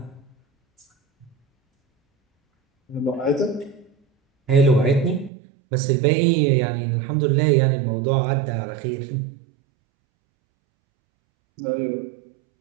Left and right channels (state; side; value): drops out; left; at 5.3 s